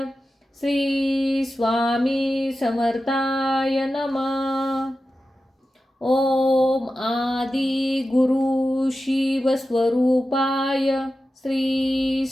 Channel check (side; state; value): both; normal; correlation 0.93